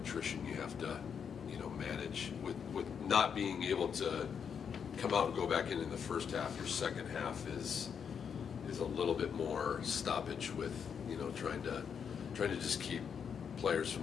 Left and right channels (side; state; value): right; quieter; 7.1 dB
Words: you have to manage with not being able to come out and go back in the first half. Your second half is a little bit more stoppage with trying to just keep players